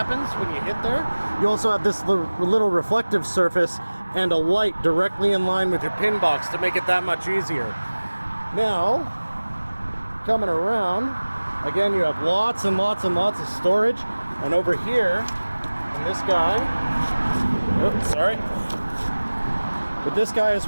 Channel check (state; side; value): inverted; both; correlation -1.00